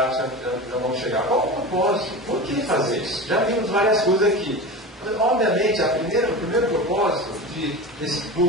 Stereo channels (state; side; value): normal; both; correlation 0.29